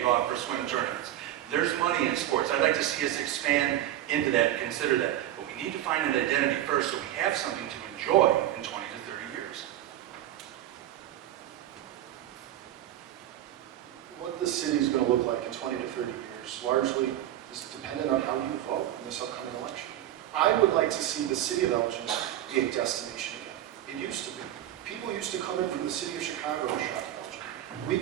off for swim tournaments. There's money in sports. I'd like to see us expand into that and consider that. But we need to find an identity first so we have something to enjoy in 20 to 30 years. What this city is going to look like in 20 to 30 years largely is dependent on how you vote in this upcoming election. I would like to see the city of Elgin be a destination again. It used to be. People used to come in from the city of Chicago and shop at Elgin. We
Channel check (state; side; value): quieter; left; 12.7 dB